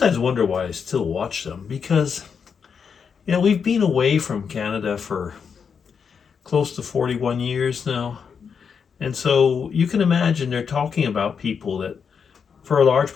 wonder why I still watch them because we've been away from Canada for close to 41 years now, and so you can imagine they're talking about people that, for a large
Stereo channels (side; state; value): right; quieter; 6.5 dB